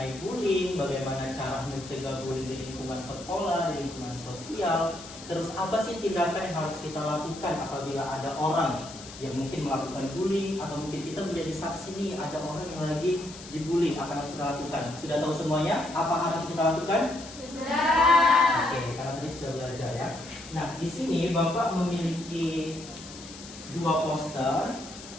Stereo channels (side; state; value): left; noise; hiss, 15 dB below the sound